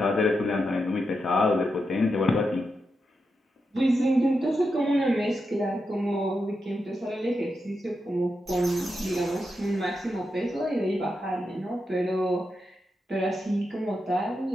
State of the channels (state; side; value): normal; both; correlation 0.87